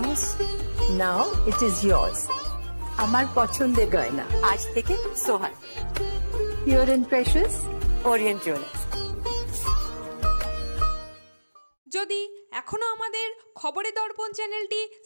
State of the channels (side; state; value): both; inverted; correlation -1.00